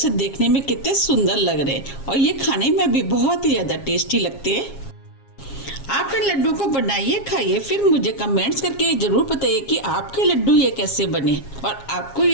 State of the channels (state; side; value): late; right; 7.3 ms